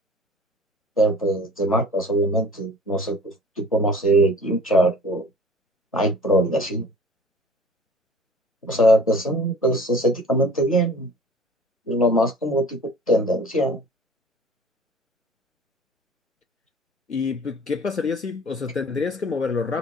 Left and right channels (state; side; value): normal; both; correlation 0.46